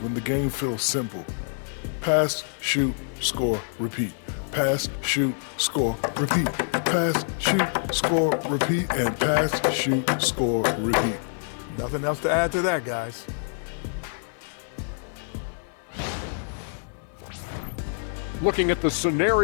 the game feels simple. Pass, shoot, score, repeat. Pass, shoot, score, repeat. Pass, shoot, score, repeat, and pass, shoot, score, repeat. Nothing else to add to that, guys. Looking at the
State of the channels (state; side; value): silent; right; 61 dB below the other